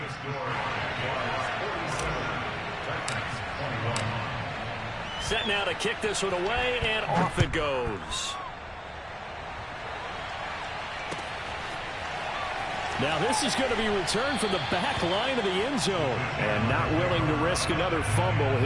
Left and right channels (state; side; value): identical; both; correlation 1.00